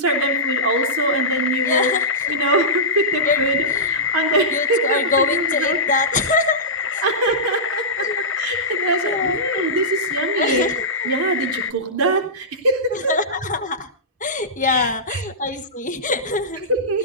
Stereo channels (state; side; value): normal; both; correlation -0.16